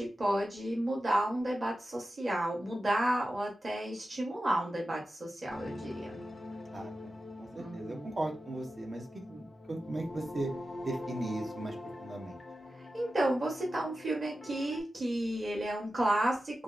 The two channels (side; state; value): both; normal; correlation 0.93